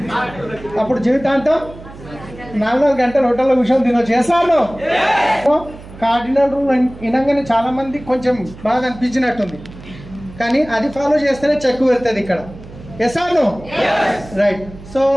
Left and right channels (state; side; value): noise; right; hum, 17 dB below the sound